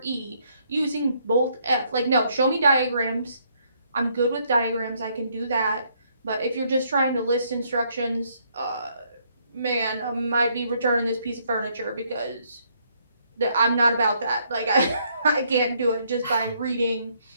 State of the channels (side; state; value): both; inverted; correlation -0.70